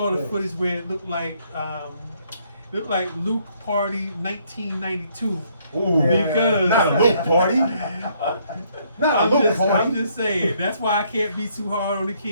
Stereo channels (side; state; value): both; inverted; correlation -0.68